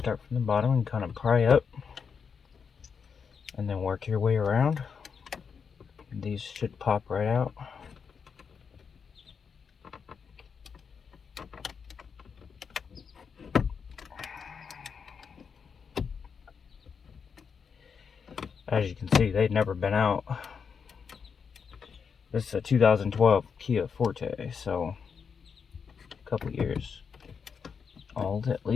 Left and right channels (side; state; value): right; quieter; 6.2 dB